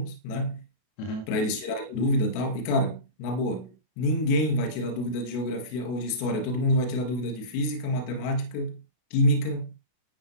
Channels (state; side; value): late; right; 32 ms